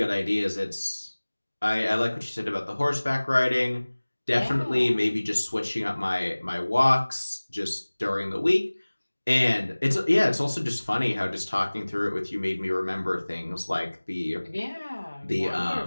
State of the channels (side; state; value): both; inverted; correlation -1.00